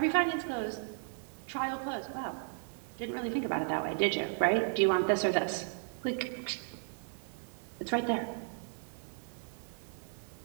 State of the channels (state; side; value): silent; left; 55 dB below the other